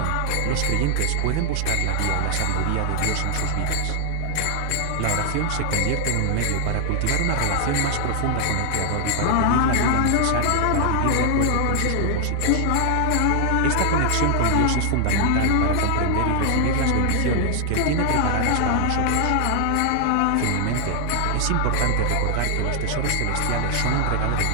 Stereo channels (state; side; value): different; both; correlation 0.00